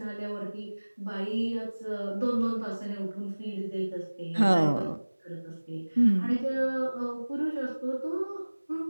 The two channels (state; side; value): inverted; both; correlation -1.00